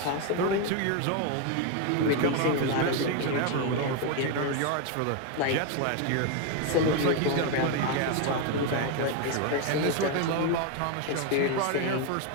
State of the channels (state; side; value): different; both; correlation 0.01